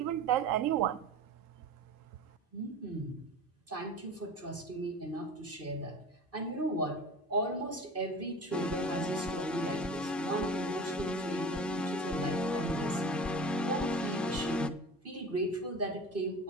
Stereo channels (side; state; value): both; normal; correlation 0.36